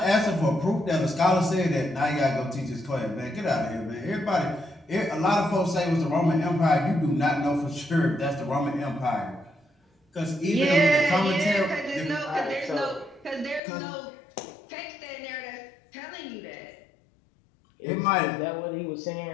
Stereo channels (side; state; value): right; drops out; at 13.6 s